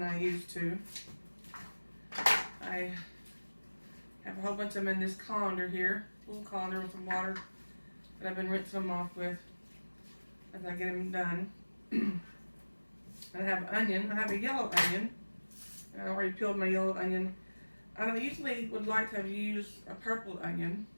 I used to. I have a whole bunch of them in this colander here, little colander with some water that I've been rinsing them off with as I get them done. And I have onion. I have a yellow onion I already peeled my yellow onion. I usually would like to have used a purple onion,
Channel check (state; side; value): inverted; both; correlation -1.00